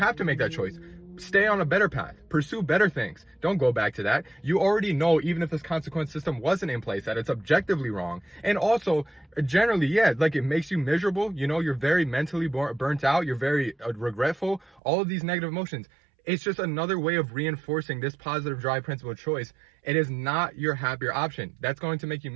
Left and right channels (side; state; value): left; drops out; at 14.8 s